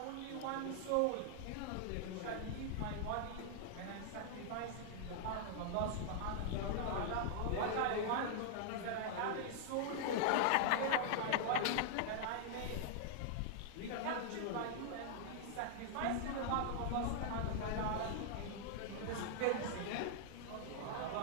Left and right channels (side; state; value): both; different; correlation -0.01